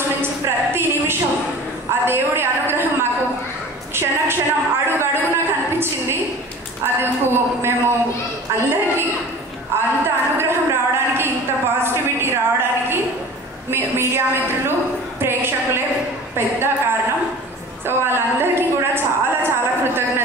నుంచి ప్రతి నిమిషం ఆ దేవుడి అనుగ్రహం మాకు క్షణక్షణం అడుగడుగున కనిపించింది. అది మేము అందరికీ అంత అనుగ్రహం రావడానికి, ఇంత పాజిటివిటీ రావడానికి మీడియా మిత్రులు, ప్రేక్షకులే పెద్ద కారణం. సో వాళ్ళందరికీ కూడా చాలా చాలా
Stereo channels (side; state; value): both; normal; correlation 0.40